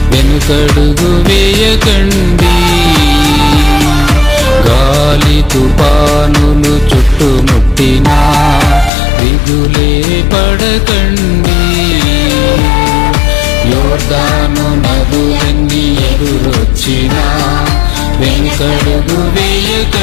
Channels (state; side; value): drops out; right; at 8.9 s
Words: వెనుకడుగు వేయకండి, గాలి తుఫానులు చుట్టుముట్టినా దిగులే పడకండి. యోర్దాను నదులన్నీ ఎదురొచ్చినా వెనుకడుగు